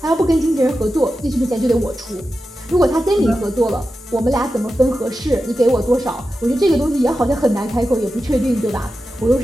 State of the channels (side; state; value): both; normal; correlation 0.91